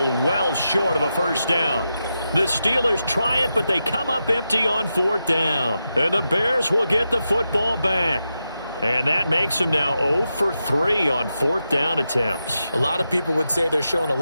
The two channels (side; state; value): both; inverted; correlation -0.88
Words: short of a first down. The Steelers try it, but they come up empty on fourth down. And the Bears will get the football back. And that makes them now 0 for 3 on fourth down attempts. A lot of people would say they're showing a